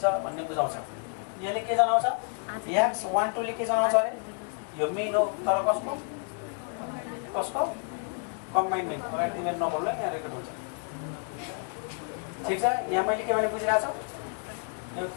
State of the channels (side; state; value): right; quieter; 39.7 dB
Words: भन्ने बुझाउँछ। यसले के जनाउँछ x12 ले के जनाउँछ अरे यो मिन हो तर कसको कम्बाइन मिन अगाडि तिमीहरू नबोल्नु यहाँ रेकर्ड हुन्छ ठिक छ यहाँ मैले के भने बुझिरहेको छु यो